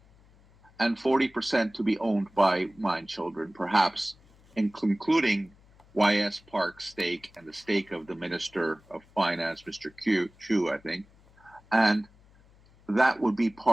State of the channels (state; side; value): noise; left; hum, 28 dB below the sound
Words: and 40% to be owned by Mindchildren, perhaps including YS Park's stake and the stake of the Minister of Finance, Mr. Chu, I think. And that would be